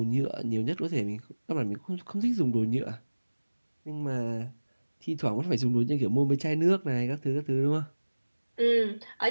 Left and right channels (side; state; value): both; inverted; correlation -1.00